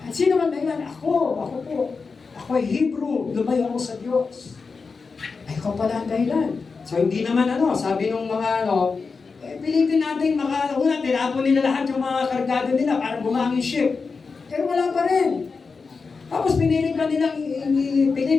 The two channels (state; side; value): quieter; right; 4.7 dB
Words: Sino man dahilan? Ako po. Ako ay Hebrew. Lumayo ako sa Diyos. Ay, ikaw pala ang dahilan. So, hindi naman sabi nung mga pilitin natin una, tinapon nila lahat yung mga kargado nila para bumangin ship. Pero wala pa rin. Tapos pinilit pa nilang